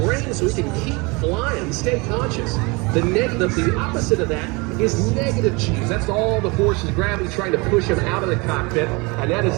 brain so he can keep flying, stay conscious. The opposite of that is negative G's. That's all the forces of gravity trying to push him out of the cockpit, and that is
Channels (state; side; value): quieter; left; 27.2 dB